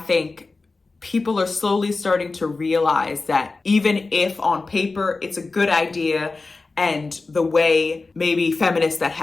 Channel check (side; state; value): right; quieter; 3.7 dB